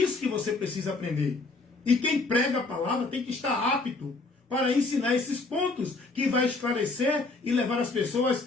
que você precisa aprender. E quem prega a palavra tem que estar apto para ensinar esses pontos, que vai esclarecer e levar as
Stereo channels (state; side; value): quieter; right; 3.5 dB